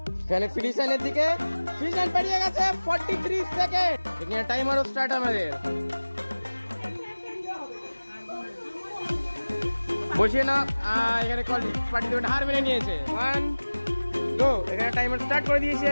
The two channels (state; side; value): inverted; both; correlation -1.00